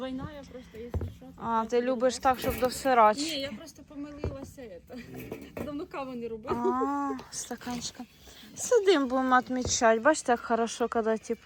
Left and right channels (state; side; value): identical; both; correlation 1.00